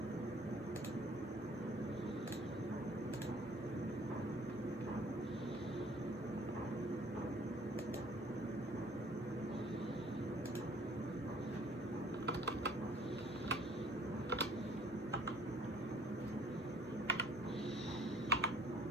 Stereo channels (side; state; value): both; normal; correlation 0.56